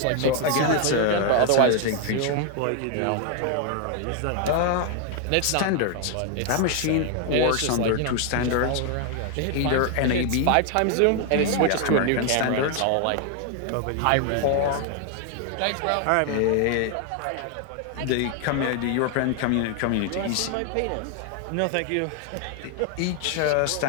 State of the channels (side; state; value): both; different; correlation 0.00